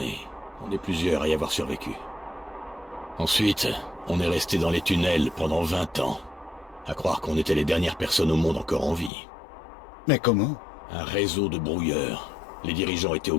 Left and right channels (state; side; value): drops out; right; at 9.1 s